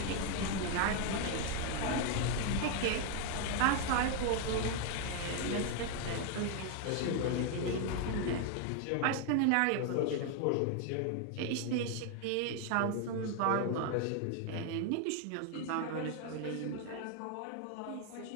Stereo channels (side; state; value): both; different; correlation 0.01